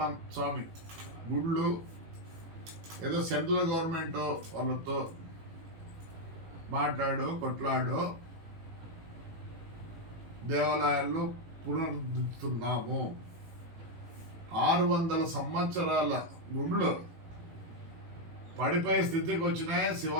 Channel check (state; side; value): late; left; 18 ms